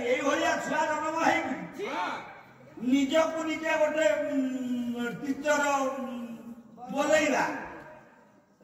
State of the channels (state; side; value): identical; both; correlation 1.00